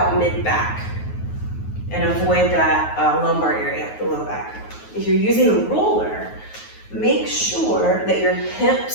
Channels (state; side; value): late; right; 9.4 ms